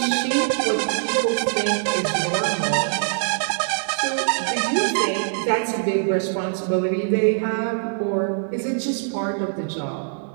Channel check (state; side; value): silent; left; digital silence